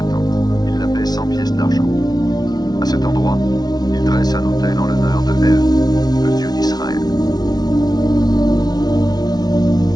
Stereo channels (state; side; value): late; right; 0.19 ms